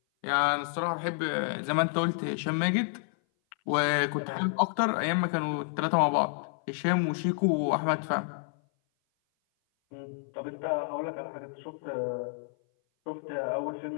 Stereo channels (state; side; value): silent; right; 56 dB below the other